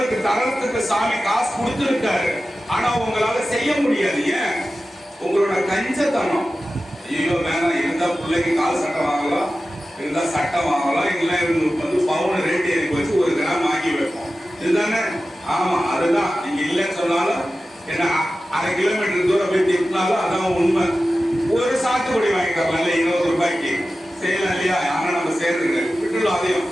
தரத்துக்கு சாமி காசு கொடுத்துருக்காரு, ஆனா உங்களால செய்ய முடியாது. ஏன்? உங்களோட கஞ்சத்தனம். ஐயோ வேணாம், இருந்தா பிள்ளைக்கு கால் சட்டை வாங்கலாம், இருந்தா சட்டை வாங்கலாம், இல்ல வந்து பவுன் ரேட் ஏறி வச்சு 1 கிராம் வாங்கி வைப்போம். இதுதானே? ஆமா, அதுதான். நீங்க இல்லைன்னு சொன்னாலும் என்ன 1/2 கிலோமீட்டர் தூரம் போய் திட்டினாலும் அதான் உண்மை. ஒரு சாத்துக்குடி வாங்கி தரலாம் 20 ரூபாய்க்கு செய்யலாம் இல்லையா? ஆனா நம்ம சேர்ந்துங்க விட்டுலாம். அதையும்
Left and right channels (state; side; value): normal; both; correlation 0.94